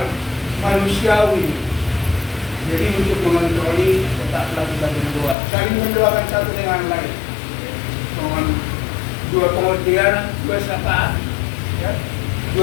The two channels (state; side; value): drops out; right; at 5.4 s